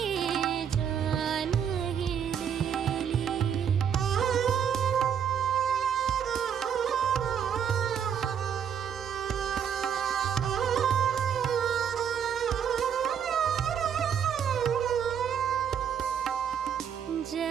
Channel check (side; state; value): left; quieter; 8.2 dB